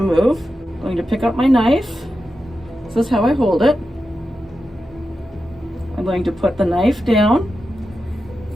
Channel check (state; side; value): normal; both; correlation 0.90